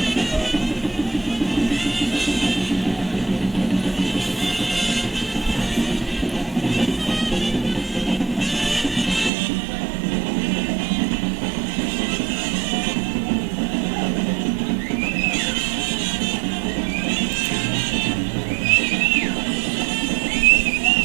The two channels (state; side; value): drops out; left; at 9.3 s